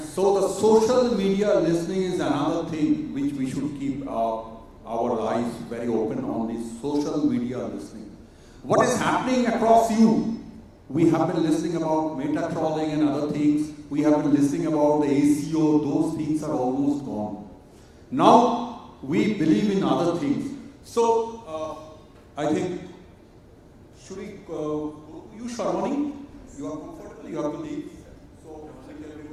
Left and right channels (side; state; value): both; identical; correlation 1.00